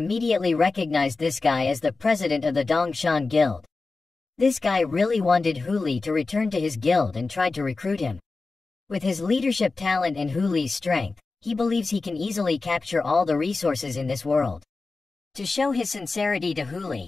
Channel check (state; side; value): quieter; right; 3.8 dB